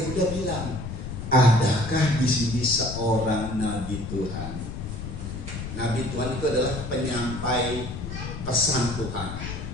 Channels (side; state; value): left; noise; rumble, 7 dB below the sound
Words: bilang, adakah di sini seorang nabi Tuhan? Nabi Tuhan itu adalah penyampai pesan Tuhan,